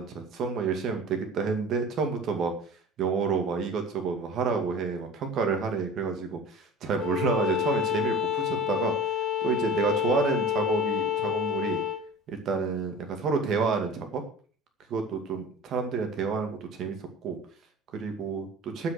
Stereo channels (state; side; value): normal; both; correlation 0.38